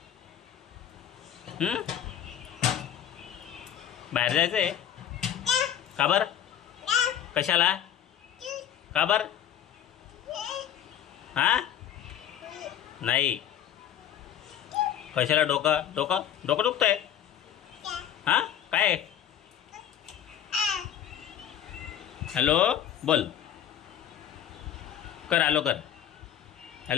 बाहेर जायचं आहे का बरं? कशाला? का बरं? हां नाही. कशाला? डोकं डोकं डोकं दुखतंय? हां काय? हॅलो बोल. कर हॅलो कर.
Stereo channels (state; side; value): quieter; right; 10.2 dB